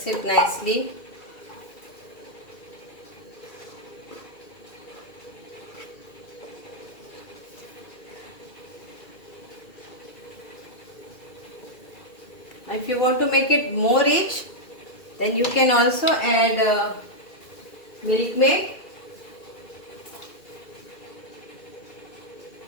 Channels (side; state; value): right; late; 2.4 ms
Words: it nicely. If you want to make it more rich, then you can also add milkmaid.